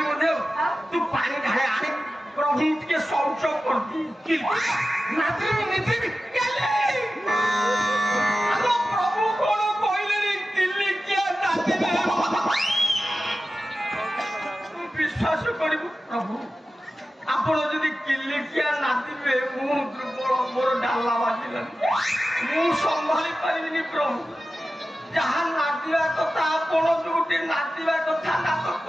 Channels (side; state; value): both; normal; correlation 0.94